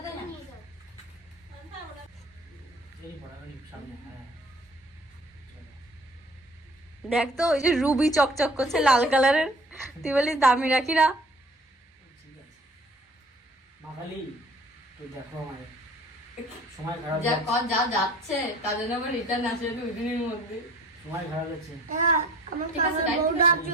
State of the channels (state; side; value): normal; both; correlation 0.51